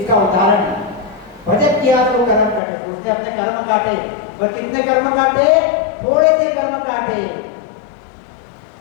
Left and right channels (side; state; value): right; drops out; at 2.6 s